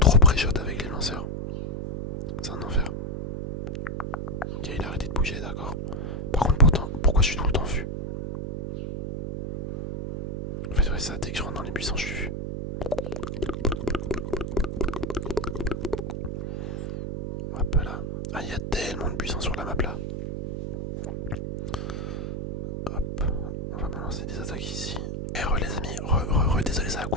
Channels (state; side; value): noise; right; hum, 3 dB below the sound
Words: pré-shot avec les lanceurs. C'est un enfer. Ok, il a arrêté de bouger, d'accord. Par contre, pourquoi je suis tout le temps vu? En fait, ouais, ça, dès que je rentre dans les buissons, je suis vu.